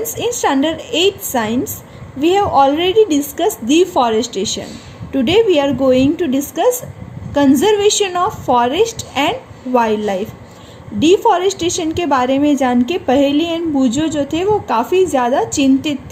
in standard 8 science, we have already discussed deforestation. Today we are going to discuss conservation of forest and wildlife. Deforestation के बारे में जान के पहेली and बूजो जो थे वो काफ़ी ज़्यादा चिंतित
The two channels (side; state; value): both; identical; correlation 1.00